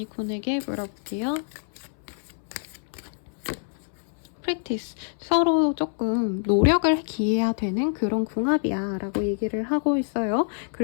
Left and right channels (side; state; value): right; silent; 59 dB below the other